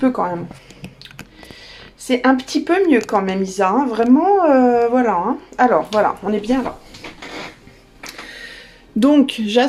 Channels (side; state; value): both; identical; correlation 1.00